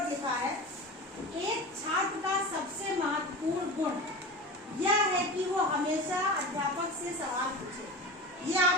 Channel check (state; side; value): normal; both; correlation 0.30